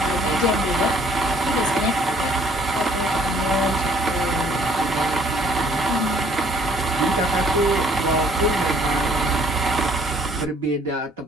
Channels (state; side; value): normal; both; correlation 0.60